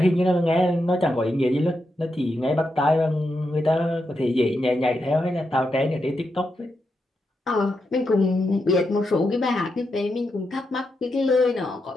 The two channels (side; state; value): both; normal; correlation 0.85